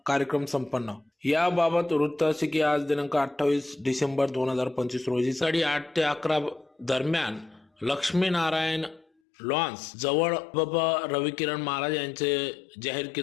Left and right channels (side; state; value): right; drops out; at 9.1 s